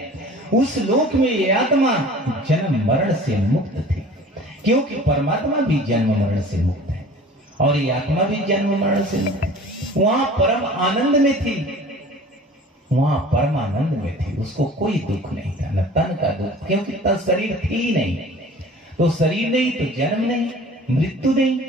उस लोक में ये आत्मा जन्म मरण से मुक्त थी, क्योंकि परमात्मा भी जन्म मरण से मुक्त है और ये आत्मा भी जन्म मरण से मुक्त है। वहां परम आनंद में थी, वहां परम आनंद में थी। उसको कोई दुख नहीं था, न तन का दुख, क्योंकि तन शरीर थी ही नहीं। तो शरीर नहीं तो जन्म नहीं, मृत्यु नहीं,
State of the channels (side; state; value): both; normal; correlation 0.44